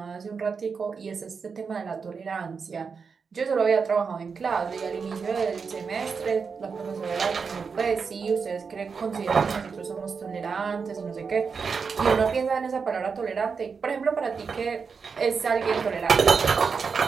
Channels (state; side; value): quieter; left; 5.5 dB